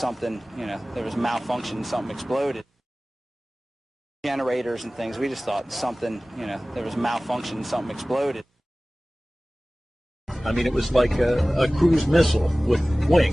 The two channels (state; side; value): normal; both; correlation 0.98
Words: there was malfunction, something exploded. Generators and things. We just thought something, there was malfunction, something exploded. I mean, it was like a cruise missile with